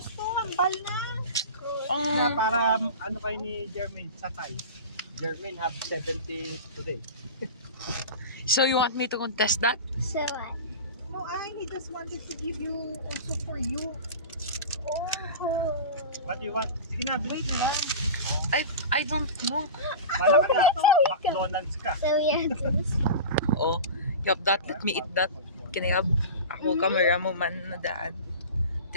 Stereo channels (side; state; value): both; inverted; correlation -0.30